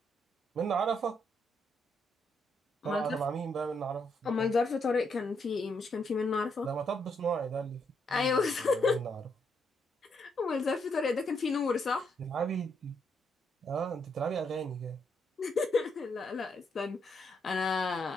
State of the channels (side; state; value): both; normal; correlation 0.76